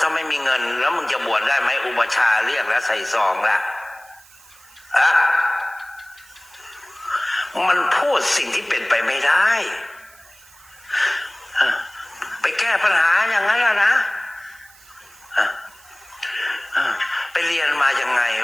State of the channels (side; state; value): right; noise; hiss, 25 dB below the sound